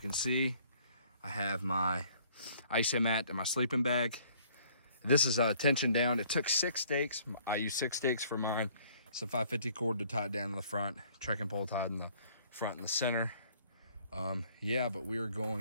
see, I have my isomat and my sleeping bag. This is tension down. It took 6 stakes. I used 6 stakes for mine. Some 550 cord to tie it down in the front. Trekking pole tied in the front and the center. Yeah, but we're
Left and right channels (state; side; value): inverted; both; correlation -0.59